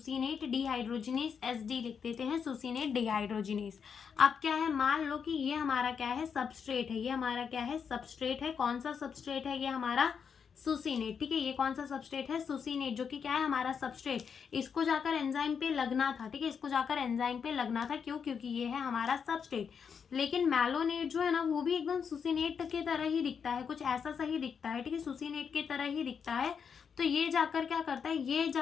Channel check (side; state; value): right; quieter; 6.7 dB